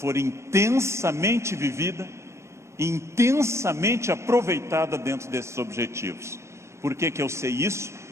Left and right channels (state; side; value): late; left; 0.13 ms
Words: intensamente vivida, intensamente aproveitada dentro desses objetivos. Por que que eu sei isso?